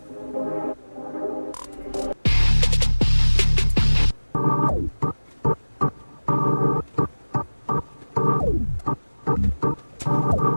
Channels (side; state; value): both; inverted; correlation -1.00